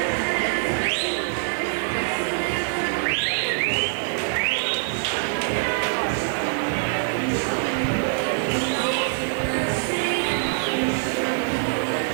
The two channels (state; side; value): silent; left; digital silence